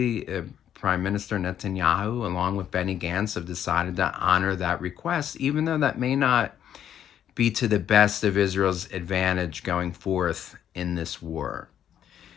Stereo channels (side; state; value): right; quieter; 9.9 dB